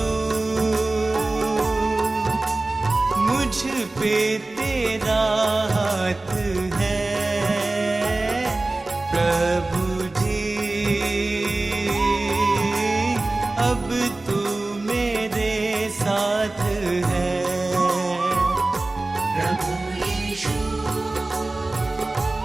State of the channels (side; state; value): left; quieter; 3.0 dB